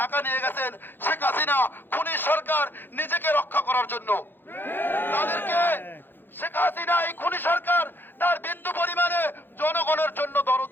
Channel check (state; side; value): late; right; 0.098 ms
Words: ঢাকা নিয়ে গেছেন শেখ হাসিনা খুনি সরকার নিজেকে রক্ষা করার জন্য। তাদেরকে শেখ হাসিনা এই খুনি সরকার তার বিন্দু পরিমাণে জনগণের জন্য দরদ